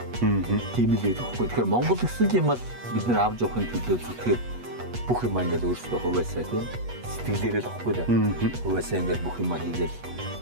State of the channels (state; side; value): late; left; 8.2 ms